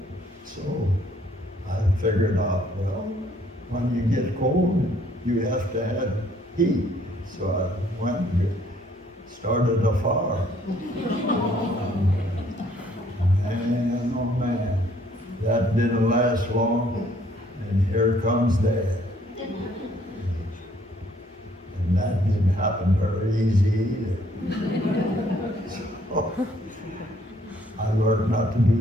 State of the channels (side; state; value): both; normal; correlation 0.64